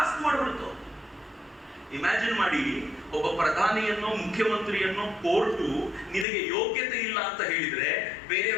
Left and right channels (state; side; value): drops out; right; at 6.2 s